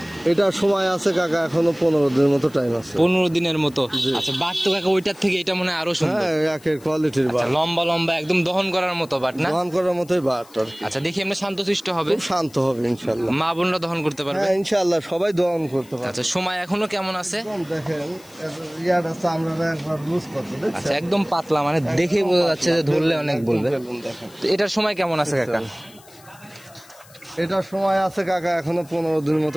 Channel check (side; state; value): left; noise; hiss, 24 dB below the sound